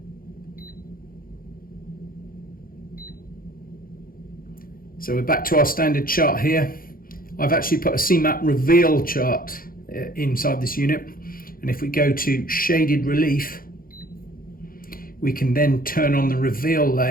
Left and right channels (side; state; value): right; late; 0.42 ms